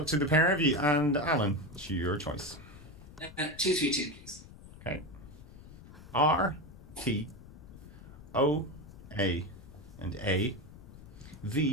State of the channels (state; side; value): noise; left; rumble, 17 dB below the sound